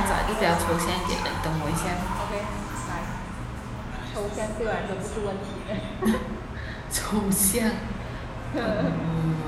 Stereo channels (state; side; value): identical; both; correlation 1.00